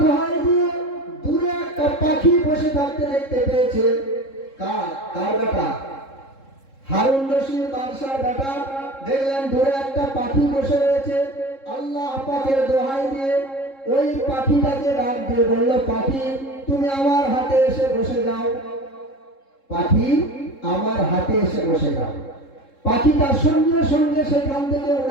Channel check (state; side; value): late; right; 3.7 ms